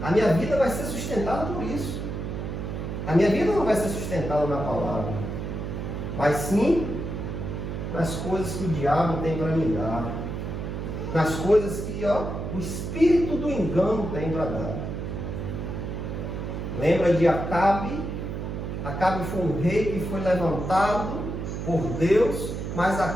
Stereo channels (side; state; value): right; noise; hum, 5 dB below the sound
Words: A minha vida vai ser sustentada por isso. A minha vida não vai ser sustentada na palavra, mas sim nas coisas que o diabo tem para me dar. Nas coisas que, ó, o espírito do engano tem para dar. Lembra de Acabe? Acabe foi um rei que foi levantado por Deus, mas